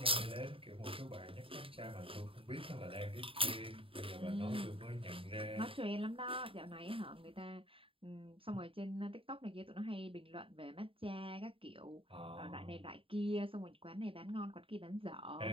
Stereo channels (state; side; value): late; left; 0.26 ms